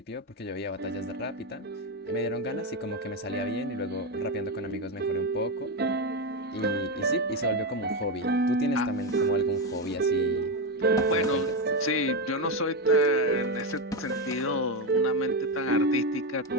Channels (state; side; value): normal; both; correlation 0.10